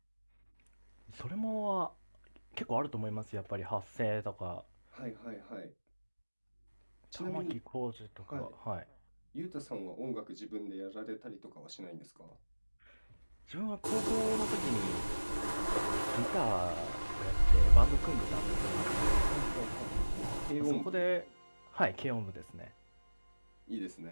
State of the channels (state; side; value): inverted; both; correlation -1.00